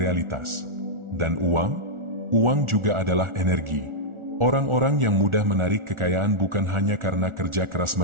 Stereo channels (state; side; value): late; left; 1.4 ms